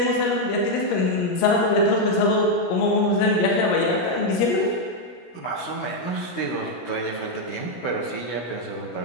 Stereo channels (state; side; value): late; right; 16 ms